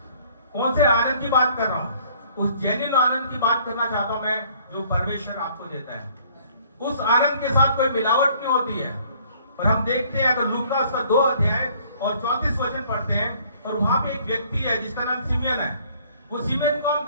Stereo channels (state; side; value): inverted; both; correlation -0.59